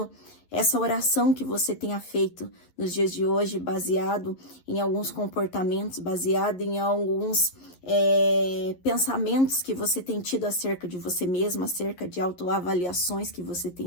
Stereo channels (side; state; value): right; late; 11 ms